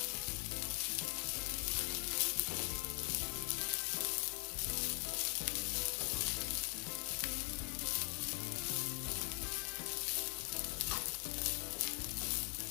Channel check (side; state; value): right; quieter; 39.1 dB